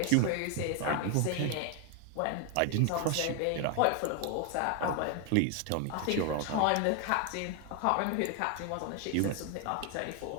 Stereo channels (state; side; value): different; both; correlation 0.00